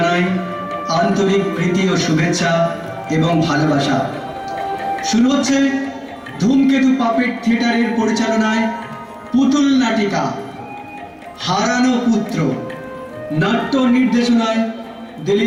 আন্তরিক প্রীতি ও শুভেচ্ছা এবং ভালোবাসা। শুরু হচ্ছে ধূমকেতু পাপেট থিয়েটারের পরিচালনায় পুতুল নাটিকা হারানো পুত্র। নাট্য নির্দেশনায়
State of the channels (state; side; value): identical; both; correlation 1.00